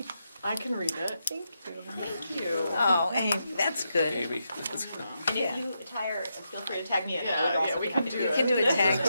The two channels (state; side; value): inverted; both; correlation -0.84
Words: I can read it. Thank you. Thank you. Oh, Amy, that's good. Amy, And Yeah. if you tire, feel free to tag me in. I would Yeah, also yeah, we be can happy to do You it. can do a tag